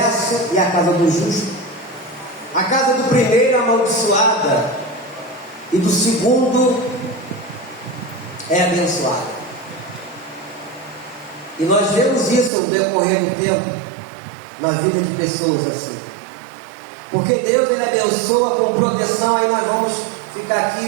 e a casa do justo. A casa do primeiro amaldiçoada e do segundo é abençoada. E nós vemos isso no decorrer do tempo na vida de pessoas assim. Porque Deus, Ele abençoa com proteção. Aí nós vamos ficar aqui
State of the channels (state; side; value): drops out; left; at 12.5 s